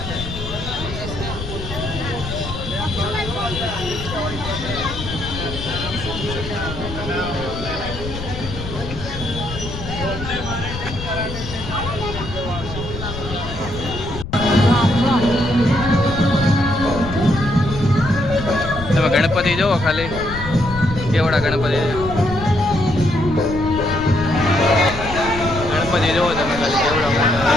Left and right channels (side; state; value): left; noise; rumble, 9 dB below the sound